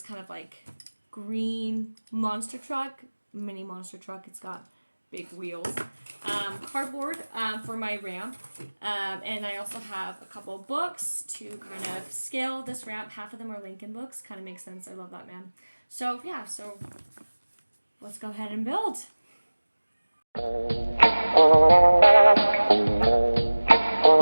kind of like green monster truck, mini monster truck. It's got big wheels. Cardboard for my ramp. And I also have a couple books to kind of scale this ramp. Half of them are Lincoln books. Kind of makes sense. I love that man. So yeah, so let's go ahead and build.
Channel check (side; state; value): both; inverted; correlation -1.00